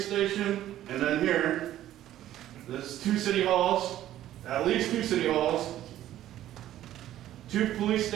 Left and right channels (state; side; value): quieter; left; 13.0 dB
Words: station, and then here. There's 2 city halls, at least 2 city halls, 2 police